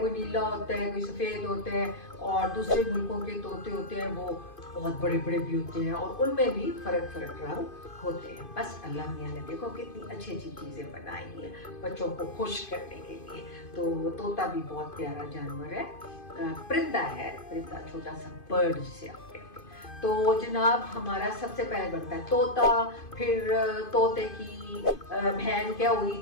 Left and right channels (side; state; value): right; late; 2.5 ms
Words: नीला होता है, कोई सफेद होता है। और दूसरे मुल्कों के तोते होते हैं, वो बहुत बड़े बड़े भी होते हैं और उनमें भी फर्क रंग होते हैं। बस अल्लाह मियाँ ने देखो कितनी अच्छी अच्छी चीजें बनाई हैं बच्चों को खुश करने के लिए। तो तोता भी बहुत प्यारा जानवर है, परिंदा है, परिंदा छोटा सा बर्ड जिसे आप कहते हैं। तो जनाब हमारा सबसे पहले बनता है तोता, फिर तोते की बहन क्या हुई,